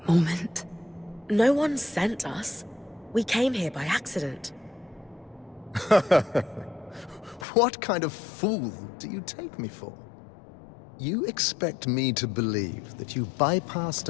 Moment. No one sent us. We came here by accident. What kind of fool do you take me for? You expect me to believe that you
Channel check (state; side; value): drops out; right; at 7.5 s